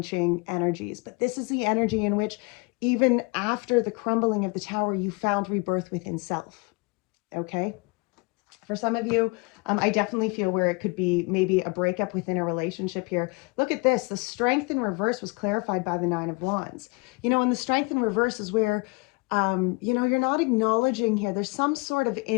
energies. But this is the energy in which, even after the crumbling of the Tower, you found rebirth within self. Okay? For some of you, I definitely feel where it could be maybe a breakup within a relationship here. Look at this. The Strength in reverse was clarified by the 9 of Wands. You know, and the Strength in reverse is where, you know, you're not acknowledging here. There's some sort of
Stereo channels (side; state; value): right; quieter; 28.1 dB